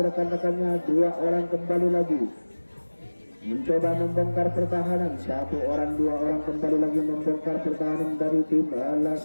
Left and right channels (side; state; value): both; inverted; correlation -1.00